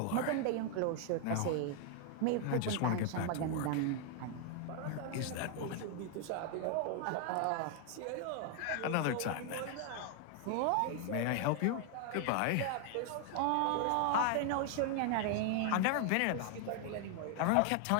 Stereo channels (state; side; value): different; both; correlation 0.00